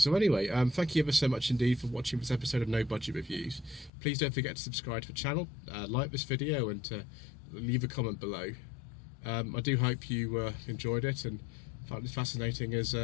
anyway, thank you ever so much indeed for watching this episode of No Budget Reviews. Please don't forget to subscribe to the channel, like this video, and to leave a comment below. I do hope you enjoyed it and found it fascinating as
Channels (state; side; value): drops out; right; at 3.9 s